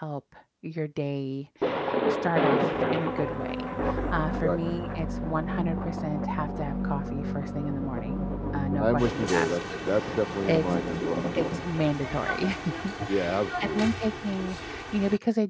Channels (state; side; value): identical; both; correlation 1.00